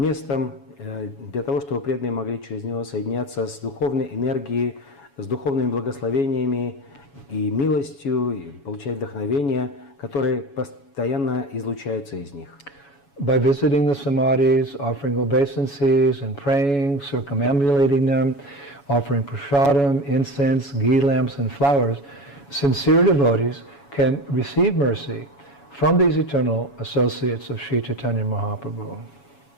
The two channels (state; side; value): late; right; 7.1 ms